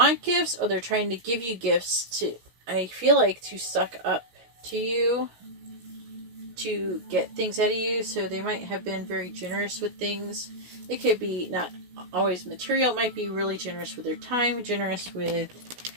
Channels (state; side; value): late; left; 16 ms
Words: gifts or they're trying to give you gifts to, I feel like, to suck up to you, to get things out of you. So they might have been very generous with things. It could be not always material. It might be really generous with their time, generous with